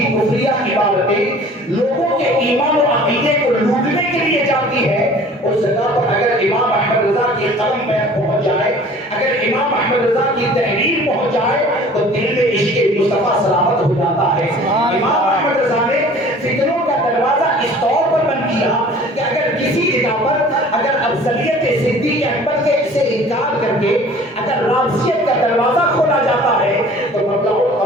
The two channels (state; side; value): normal; both; correlation 0.48